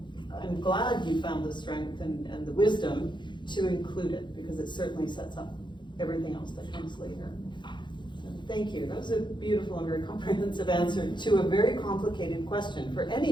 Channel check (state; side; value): late; right; 0.23 ms